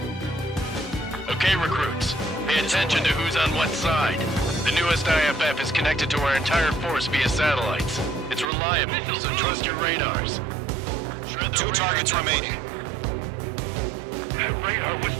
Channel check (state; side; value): drops out; left; at 8.5 s